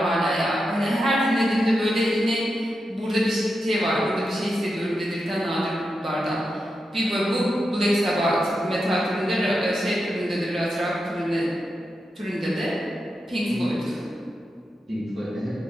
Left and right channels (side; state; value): both; normal; correlation 0.88